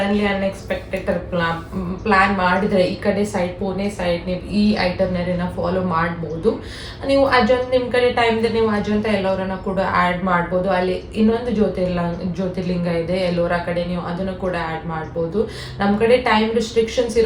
ಅನ್ಎಕ್ಸ್ಪೆಕ್ಟೆಡ್ ಪ್ಲಾನ್ ಮಾಡಿದ್ರೆ ಈ ಕಡೆ ಸೈಡ್ ಪುಣೆ ಸೈಡ್ ನೀವು ಈ ಐಟರ್ನರಿನ ಫಾಲೋ ಮಾಡ್ಬೋದು. ನೀವು ಅಜಂತ ನಿಮ್ಮ ಕಡೆ ಟೈಮ್ ಇದೆ, ನೀವು ಅಜಂತ ಎಲ್ಲೋರನ್ನ ಕೂಡ ಆ್ಯಡ್ ಮಾಡ್ಬೋದು. ಅಲ್ಲಿ ಇನ್ನೊಂದು ಜ್ಯೋತಿರ್ಲಿಂಗ ಇದೆ ಎಲ್ಲೋರ ಕಡೆ, ನೀವು ಅದನ್ನು ಕೂಡ ಆ್ಯಡ್ ಮಾಡ್ಬೋದು. ನಮ್ಮ ಕಡೆ ಟೈಮ್ ರಿಸ್ಟ್ರಿಕ್ಷನ್ಸ್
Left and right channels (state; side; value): identical; both; correlation 1.00